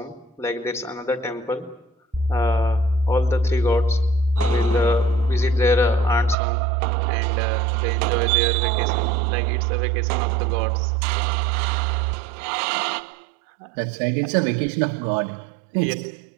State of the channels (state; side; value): drops out; left; at 6.4 s